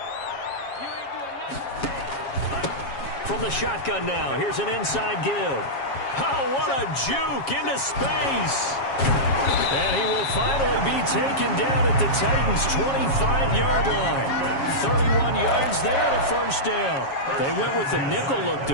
From the shotgun now, here's an inside give. Oh, what a juke into space. And he will finally be taken down at the Titans' 25-yard line. 31 yards there and a first down. They went with the nickel look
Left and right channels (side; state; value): right; late; 7.3 ms